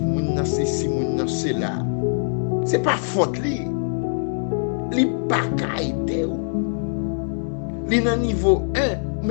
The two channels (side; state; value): right; silent; digital silence